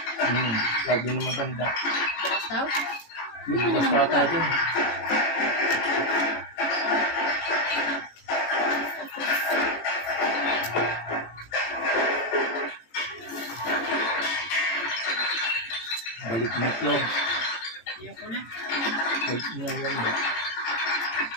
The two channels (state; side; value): late; right; 18 ms